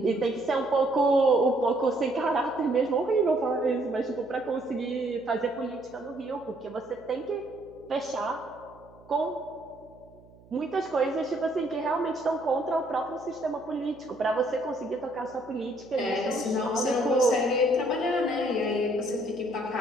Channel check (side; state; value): right; noise; hum, 25 dB below the sound